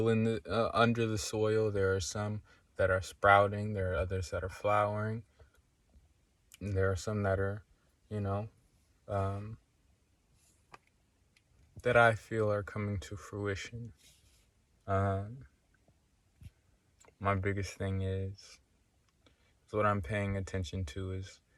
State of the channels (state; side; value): identical; both; correlation 1.00